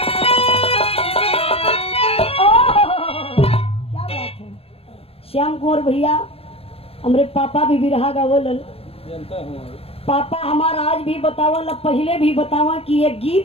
श्याम कुंवर भैया हमारे पापा भी बिरहा गावलन। पापा हमारा आज भी बतावल, पहले भी बतावा कि ये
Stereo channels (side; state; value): right; late; 0.28 ms